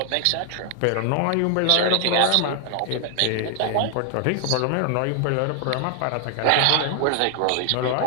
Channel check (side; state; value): both; different; correlation 0.00